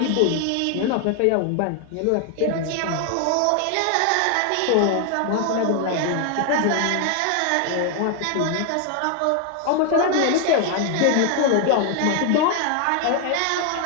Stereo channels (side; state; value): both; different; correlation 0.00